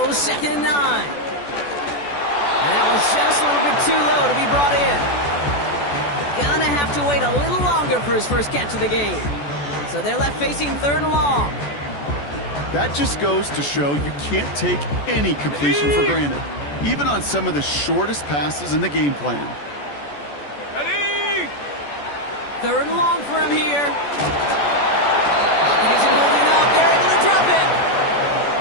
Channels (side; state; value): right; late; 14 ms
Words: 2nd and 9. And that was just a little bit too low to be brought in. Gonna have to wait a little longer for his first catch of the game. So they're left facing 3rd and long. That just goes to show you can't take any completion for granted, even on some of the shortest passes in the game plan. 3rd and long for him here. Pocket isn't holding up. They're able to drop it.